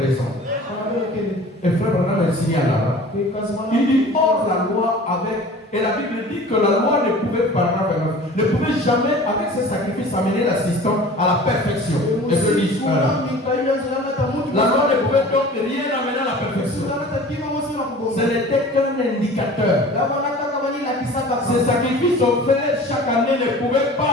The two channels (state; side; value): normal; both; correlation 0.42